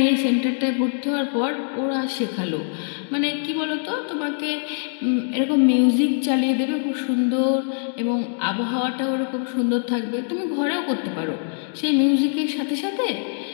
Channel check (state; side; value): silent; right; 63 dB below the other